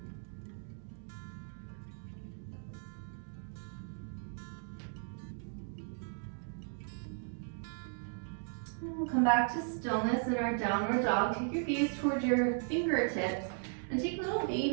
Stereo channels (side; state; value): left; silent; digital silence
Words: And we'll come back to stillness in our downward dog. Take your gaze towards your fingertips and take little